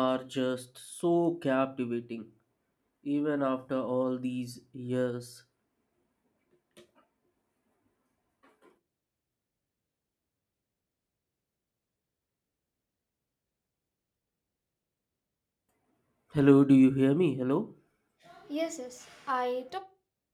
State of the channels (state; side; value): identical; both; correlation 1.00